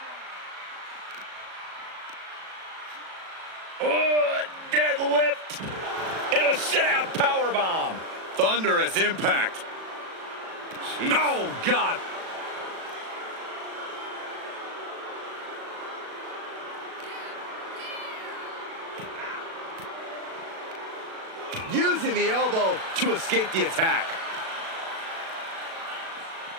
Deadlift into a sit-out powerbomb. Thunderous impact. Jeez. Oh, God. Using the elbow to escape the attack.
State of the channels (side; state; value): left; late; 37 ms